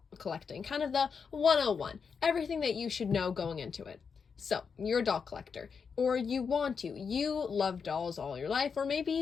collecting, kind of the 101, everything that you should know going into it. So you're a doll collector, or you want to, you love dolls all your life, or maybe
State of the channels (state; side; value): quieter; right; 5.9 dB